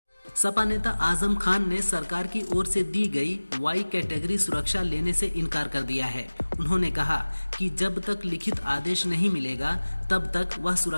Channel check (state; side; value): inverted; both; correlation -1.00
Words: सपा नेता आजम खान ने सरकार की ओर से दी गई वाई कैटेगरी सुरक्षा लेने से इनकार कर दिया है। उन्होंने कहा कि जब तक लिखित आदेश नहीं मिलेगा तब तक वह